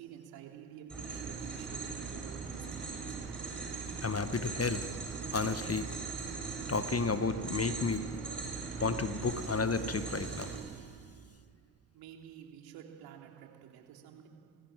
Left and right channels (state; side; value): normal; both; correlation 0.18